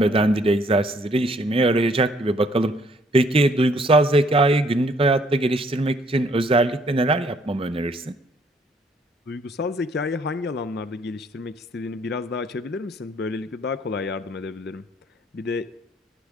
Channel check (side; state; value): both; normal; correlation 0.64